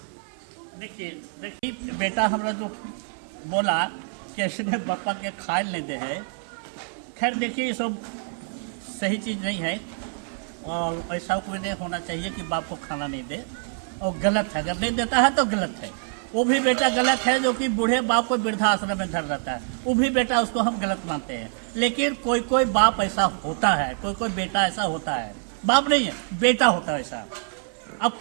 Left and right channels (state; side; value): silent; left; 61 dB below the other